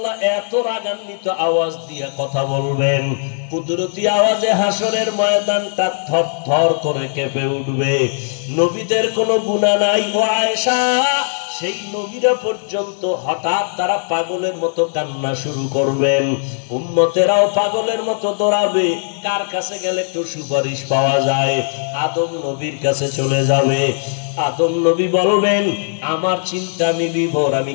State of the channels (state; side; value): silent; right; digital silence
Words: এত রাগান্বিত আওয়াজ দিয়ে কথা বলবেন, কুদরতি আওয়াজে হাসরের ময়দানটা থরথর করে কেঁপে উঠবে। নবীদের কোনো গুনাহ নাই। ও আয়েশা, সেই নবীরা পর্যন্ত হঠাৎ তারা পাগলের মতো কান্না শুরু করবেন, উম্মতেরাও পাগলের মতো দৌড়াবে। কার কাছে গেলে একটু সুপারিশ পাওয়া যায়? আদম নবীর কাছে চলে যাবে। আদম নবী বলবেন, আমার চিন্তা আমি বিভোর, আমি